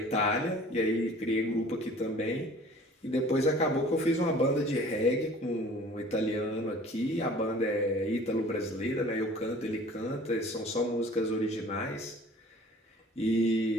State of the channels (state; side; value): normal; both; correlation 0.48